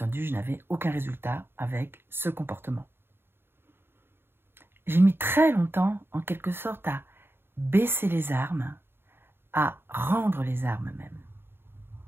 je n'avais aucun résultat avec ce comportement. J'ai mis très longtemps, en quelque sorte, à baisser les armes, à rendre les armes même.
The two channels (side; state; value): left; late; 0.11 ms